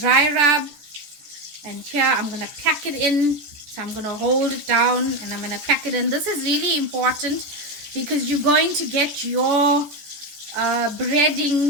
rub. And here I'm going to pack it in. So I'm going to hold it down and I'm going to pack it in. This is really important, because you're going to get your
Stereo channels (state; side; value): late; left; 14 ms